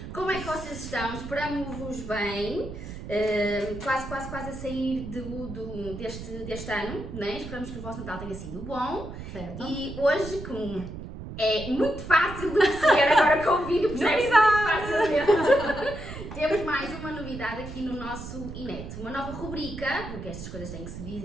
Como é que vocês estão? Esperamos-vos bem. Quase a sair deste ano, né? Esperamos que o vosso Natal tenha sido bom. Certo. E hoje, como é muito fácil de perceber agora com o vídeo, percebe-se muito facilmente. Temos mais uma novidade aqui no nosso Inet, uma nova rubrica, porque estas coisas têm que se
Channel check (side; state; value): right; noise; rumble, 10 dB below the sound